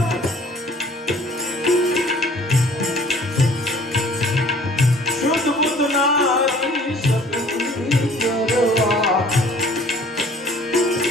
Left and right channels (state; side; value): normal; both; correlation 0.53